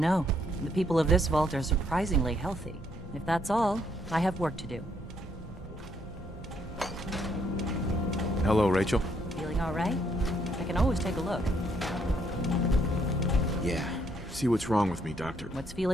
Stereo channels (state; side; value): normal; both; correlation 0.71